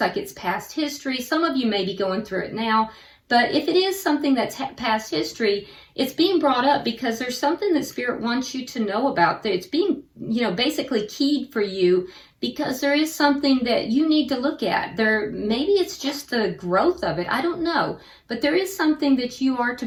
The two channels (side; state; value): both; identical; correlation 1.00